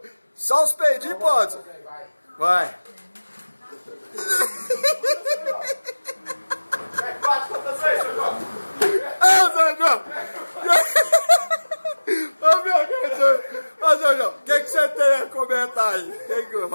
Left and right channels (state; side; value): inverted; both; correlation -1.00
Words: Só os peidinhos pode, senhor. Vai. Ô, Sr. João, o que você tem a comentar aí?